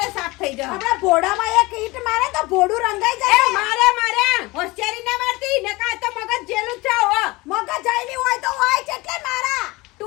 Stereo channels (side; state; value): right; quieter; 22.4 dB